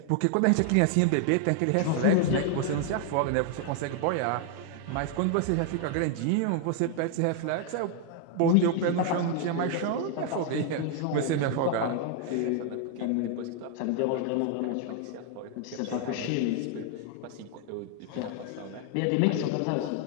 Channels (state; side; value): different; both; correlation 0.00